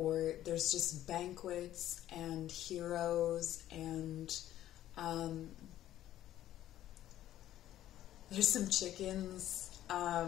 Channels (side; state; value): right; quieter; 13.0 dB